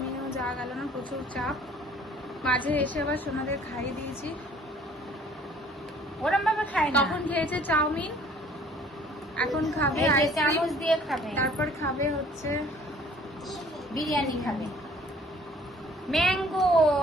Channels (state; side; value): normal; both; correlation 0.55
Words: যাওয়া গেল না, প্রচুর চাপ। মাঝে এসে আবার সোনাদের খাইয়ে দিয়েছি। ওরম ভাবে খাই না, তখন খেয়েছে চাউমিন, এখন খাবে এই যে আইসক্রিম, চামচ দিয়ে খাবে, তারপর খাবে হচ্ছে বিরিয়ানি খাবে। ম্যাঙ্গো,